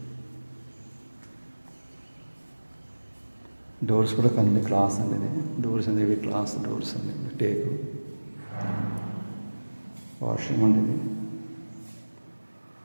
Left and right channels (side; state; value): both; inverted; correlation -1.00